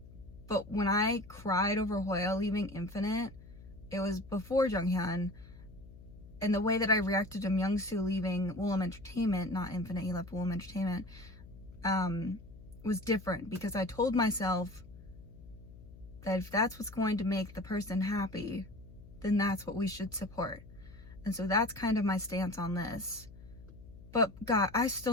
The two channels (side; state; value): left; noise; hum, 19 dB below the sound